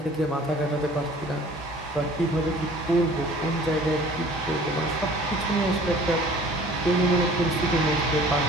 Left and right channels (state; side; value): normal; both; correlation 0.49